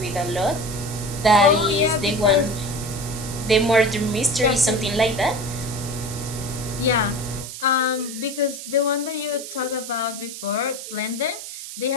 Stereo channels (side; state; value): right; noise; hiss, 10 dB below the sound